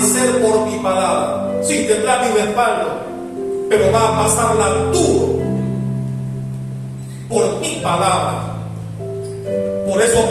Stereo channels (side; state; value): both; identical; correlation 1.00